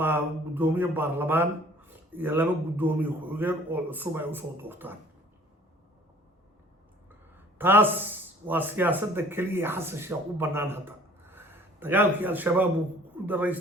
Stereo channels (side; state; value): both; normal; correlation 0.53